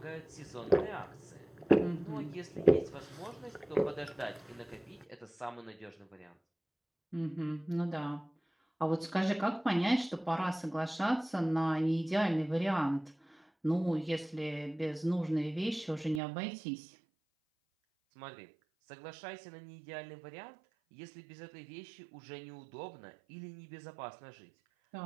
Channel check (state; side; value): drops out; left; at 16.2 s